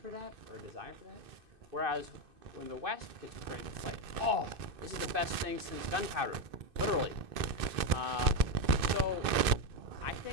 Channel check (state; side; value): late; left; 2.6 ms